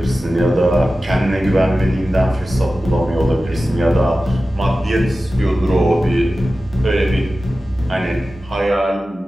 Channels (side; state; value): both; normal; correlation 0.95